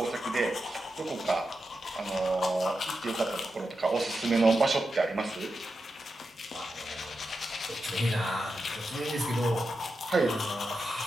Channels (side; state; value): both; normal; correlation 0.89